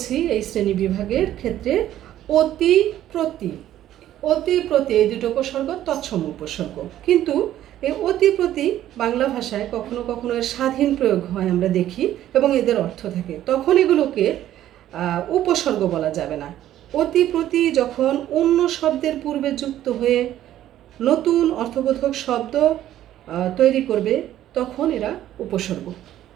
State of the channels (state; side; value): quieter; left; 12.5 dB